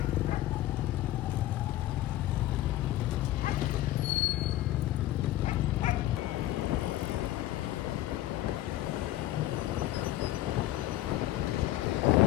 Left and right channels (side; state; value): right; quieter; 14.8 dB